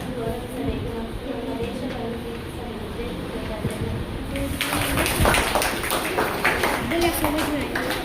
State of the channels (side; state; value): both; identical; correlation 1.00